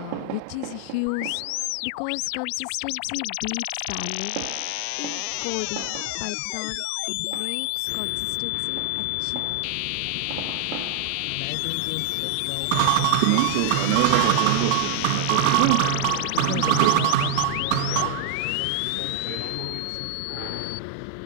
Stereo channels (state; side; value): different; both; correlation 0.00